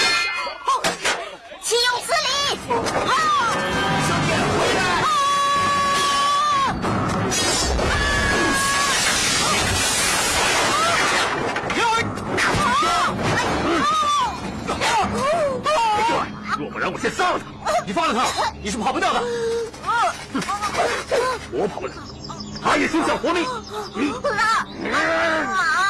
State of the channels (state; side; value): identical; both; correlation 1.00